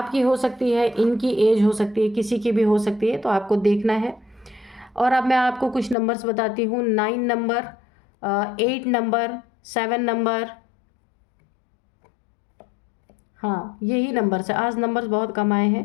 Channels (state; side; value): drops out; right; at 6.0 s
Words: हो सकती है, इनकी एज हो सकती है, किसी की भी हो सकती है, तो आपको देखना है। और अब मैं आपको कुछ नंबर्स बताती हूँ। 9 नंबर, 8 नंबर, 7 नंबर, हाँ यही नंबर से आज नंबर्स बहुत कम आए